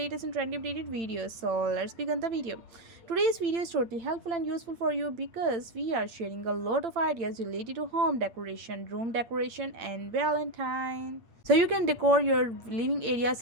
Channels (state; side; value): late; left; 8.8 ms